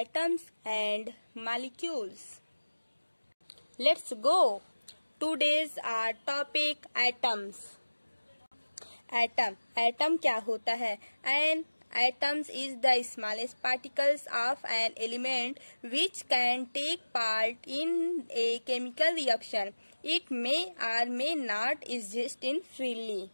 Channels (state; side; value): inverted; both; correlation -1.00